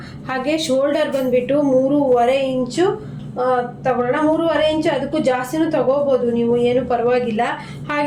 ಹಾಗೆ ಶೋಲ್ಡರ್ ಬಂದುಬಿಟ್ಟು 3.5 ಇಂಚು ತಗೊಳ್ಳೋಣ. 3.5 ಇಂಚು, ಅದಕ್ಕೂ ಜಾಸ್ತಿನೂ ತಗೋಬೋದು ನೀವು, ಏನು ಪರವಾಗಿಲ್ಲ.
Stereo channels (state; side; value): identical; both; correlation 1.00